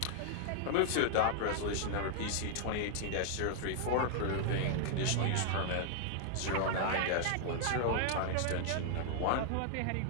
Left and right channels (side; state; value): both; different; correlation -0.01